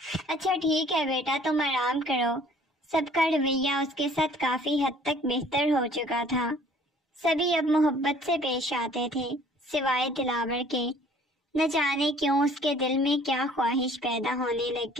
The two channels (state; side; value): normal; both; correlation 0.55